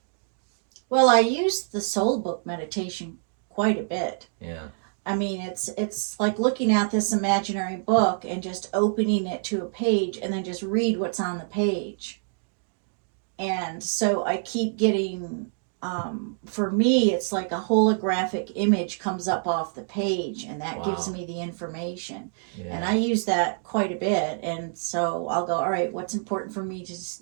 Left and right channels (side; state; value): left; silent; digital silence